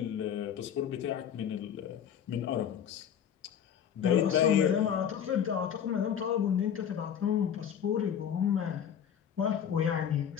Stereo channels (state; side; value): quieter; right; 8.8 dB